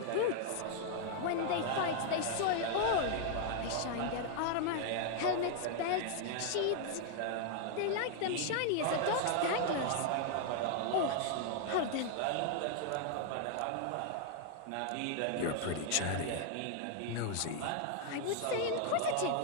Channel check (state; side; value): different; both; correlation 0.00